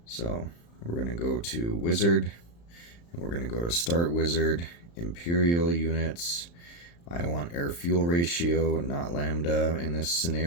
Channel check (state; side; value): late; right; 35 ms